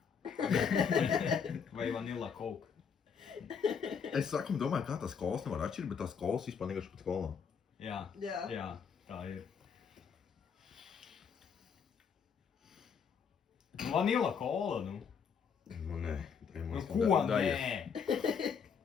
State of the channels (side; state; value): right; quieter; 6.6 dB